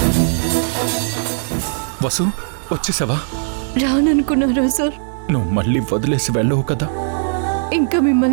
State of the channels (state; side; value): silent; left; 67 dB below the other